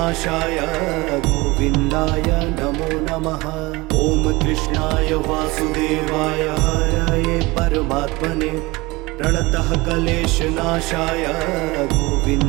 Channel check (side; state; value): left; quieter; 22.4 dB